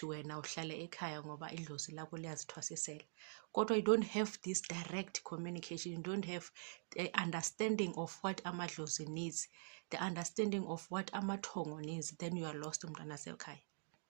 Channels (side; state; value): left; silent; digital silence